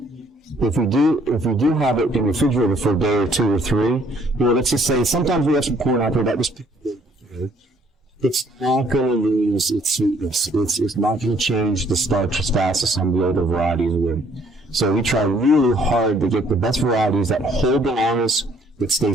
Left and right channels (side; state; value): both; normal; correlation 0.63